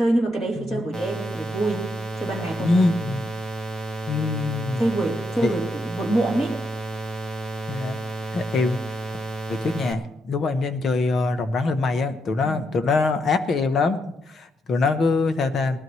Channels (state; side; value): normal; both; correlation 0.80